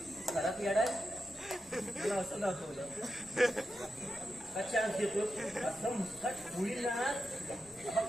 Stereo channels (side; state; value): both; normal; correlation 0.89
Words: घरात येडाय मला असं दाखवलं. अच्छा देतो असं मुस्कट होईल ना. बघ